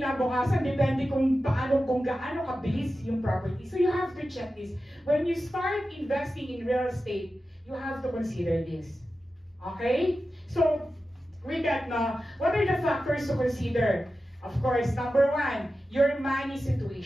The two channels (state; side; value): normal; both; correlation 0.93